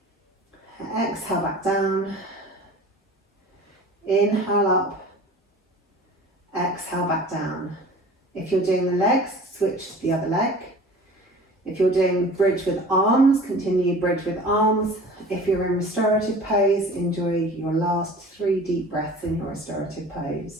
Exhale back down. Inhale up. Exhale back down. If you're doing the legs, switch to the other leg. If you're doing bridge with arms, continue bridge with arms. If you're in restorative pose, enjoy your last 3 deep breaths in your restorative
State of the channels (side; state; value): both; normal; correlation 0.42